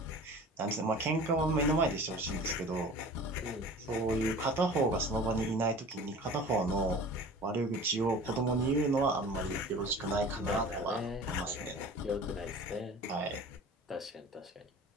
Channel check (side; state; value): both; normal; correlation 0.41